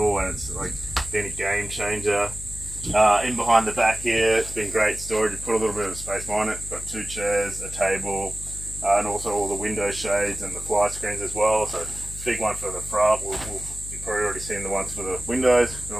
and it's like been a game changer. In behind the back here, it's been great storage. You put a little bit of space behind it. Got 2 chairs, a table, and also all the window shades and the fly screens as well. So big one for the front. You've probably already seen the ones for the windows. And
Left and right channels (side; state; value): left; noise; hum, 12 dB below the sound